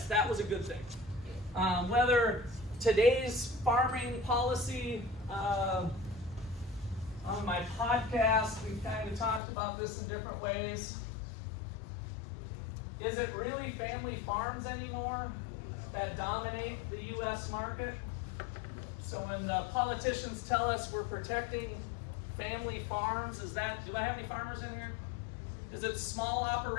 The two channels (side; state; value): right; drops out; at 9.4 s